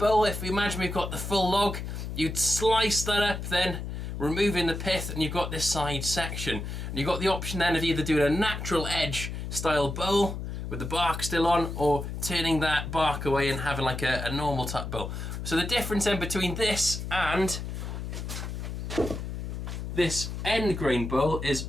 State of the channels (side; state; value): left; noise; hum, 6 dB below the sound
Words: if we imagine we've got the full log, you'd slice that up then, removing the pith, and you've got this side section. And you've got the option then of either doing a natural edge style bowl with the bark still on, or turning that bark away and having like a normal type bowl. So the difference then between this and this end grain bowl